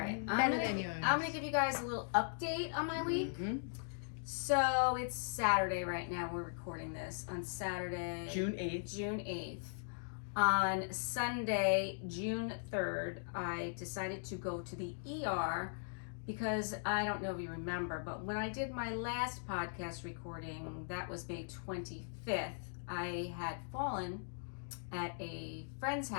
Better than yours. I'm going to give you guys a little update on my week. Mm-hmm. So it's Saturday right now. We're recording this on Saturday, June 8th. June 8th. On Sunday, June 3rd, I decided to go to the ER because I don't know if you remember, but when I did my last podcast recording, that was May 25th, I had fallen at a friend's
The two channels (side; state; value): right; silent; digital silence